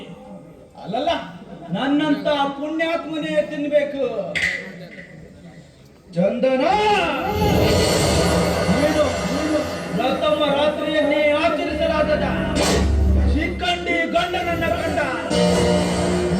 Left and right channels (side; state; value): both; identical; correlation 1.00